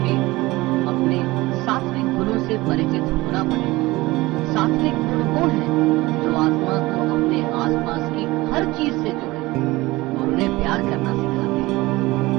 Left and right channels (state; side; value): quieter; left; 20.2 dB